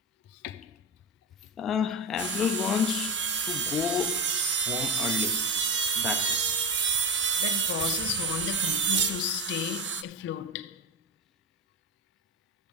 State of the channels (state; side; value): normal; both; correlation 0.19